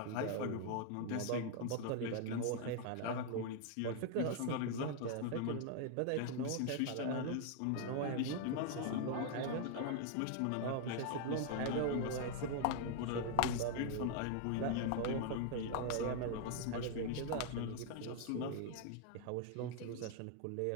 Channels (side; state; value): both; different; correlation 0.00